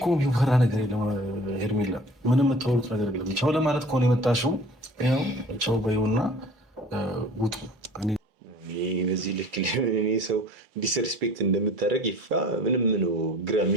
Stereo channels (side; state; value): both; normal; correlation 0.46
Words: የሚፈራ ነገር የለም ሄርሜላ፣ ምንም የምታወሩት ነገር የለም። ቻው ለማለት ከሆነ የመጣሽው ያው ቻው በይውና ውጡ። በዚህ ልክ እኔ ሰው ዲስሪስፔክት እንደምታደርግ ይፋ ምንም ነው ግራ